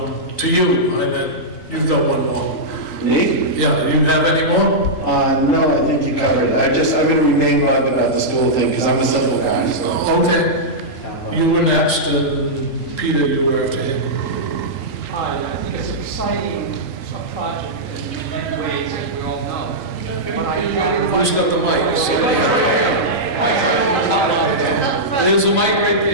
to you. I bet you've got one more. Me? Yeah. Do you have any more? No, I think you covered it. I'm going to remain bugged about the school thing because I'm a simple guy. So. Okay. You were next, and Peter, you were after him. Hi, I think it's an exciting project in many ways, as we all know. But Who's got the mic? There's a mic right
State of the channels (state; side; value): late; right; 3.8 ms